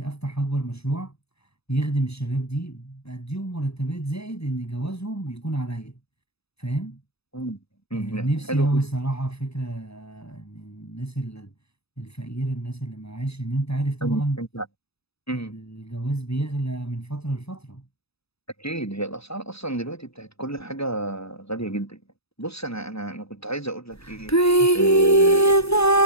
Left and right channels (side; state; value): right; late; 0.78 ms